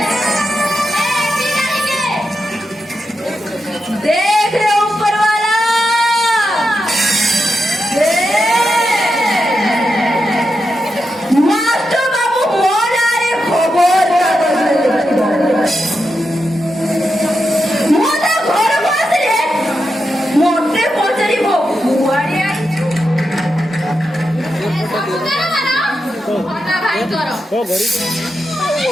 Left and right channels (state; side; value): normal; both; correlation 0.87